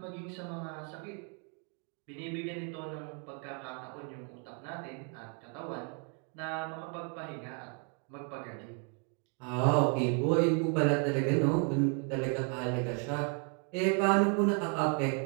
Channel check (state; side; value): quieter; left; 39.0 dB